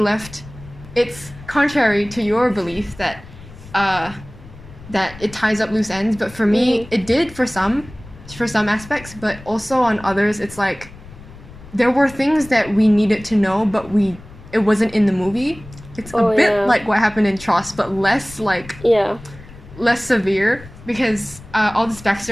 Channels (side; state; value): left; noise; rumble, 18 dB below the sound